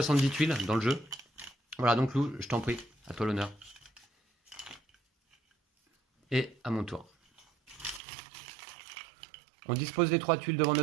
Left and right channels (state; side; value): drops out; left; at 8.0 s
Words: tuiles dans le jeu. Voilà, donc Lou, je t'en prie, à toi l'honneur. Et à mon tour. On dispose les 3 tuiles devant